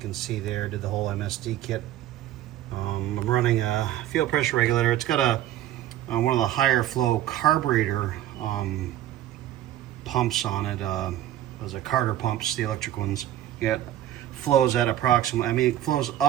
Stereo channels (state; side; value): quieter; left; 12.7 dB